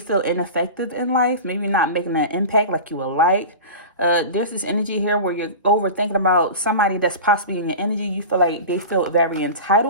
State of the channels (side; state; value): both; inverted; correlation -0.30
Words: feel ineffective in life, maybe not making an impact like you would like. There's this energy here where you're overthinking about somebody that's possibly in your energy. You feel like they feel very